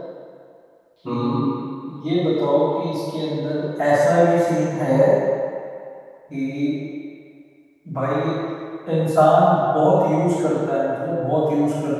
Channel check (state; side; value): identical; both; correlation 1.00